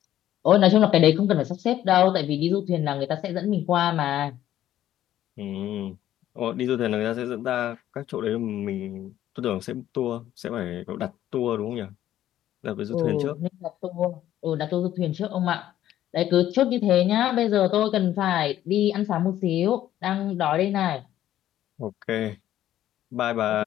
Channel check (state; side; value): quieter; right; 12.4 dB